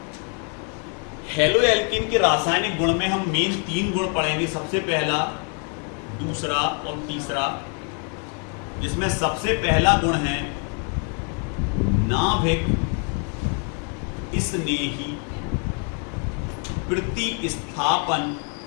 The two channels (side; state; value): right; quieter; 39.0 dB